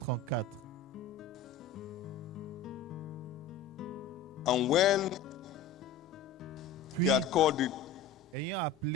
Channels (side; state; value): right; quieter; 5.5 dB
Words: And when Puis, he had called the ayant